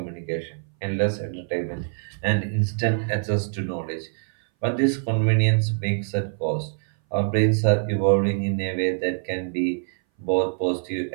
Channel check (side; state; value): left; silent; 60 dB below the other